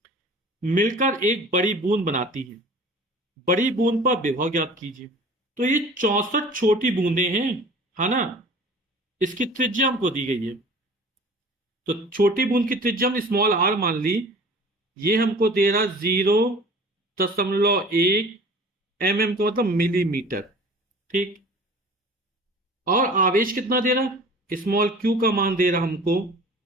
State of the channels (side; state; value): both; normal; correlation 0.44